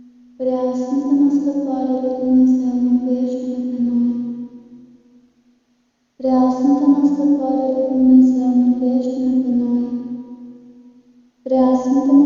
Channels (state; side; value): identical; both; correlation 1.00